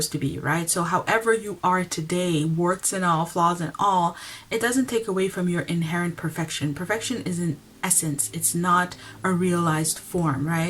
to be, right? So however you are today, warts and all, flaws and all, it doesn't take away from your inherent perfection. Perfection is an essence, it's not a realized form,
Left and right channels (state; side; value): identical; both; correlation 1.00